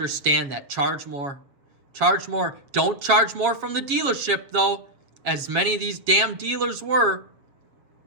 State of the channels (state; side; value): late; left; 7.4 ms